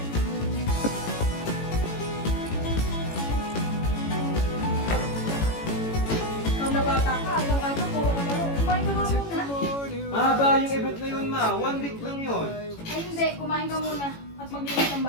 Ikaw na bata ka, araw-araw puro ka laro. Kumain ka nga muna. Mahaba yung event na yun, ma. 1 week lang yun. Ay hindi, kumain ka muna at maglinis ng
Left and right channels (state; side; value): late; right; 18 ms